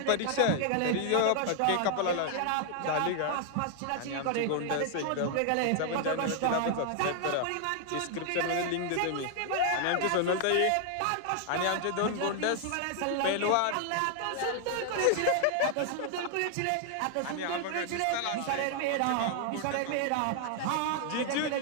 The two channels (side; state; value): both; different; correlation 0.00